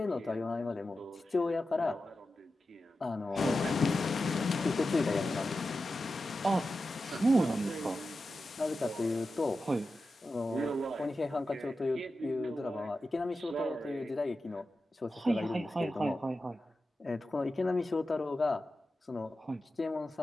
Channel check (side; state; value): both; normal; correlation 0.92